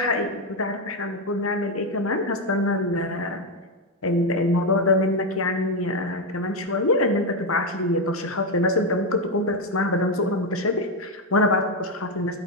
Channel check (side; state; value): both; normal; correlation 0.06